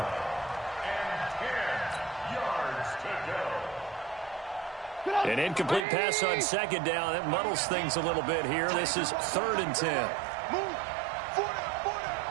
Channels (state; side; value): drops out; left; at 5.9 s